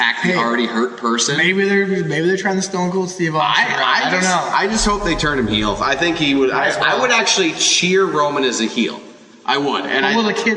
the already hurt person. Maybe they're trying to Stone Cold Steve Austin. I don't know. I just hope they turn him heel. I think he would. I would actually cheer Roman as a heel. I would. And will the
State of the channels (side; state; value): both; identical; correlation 1.00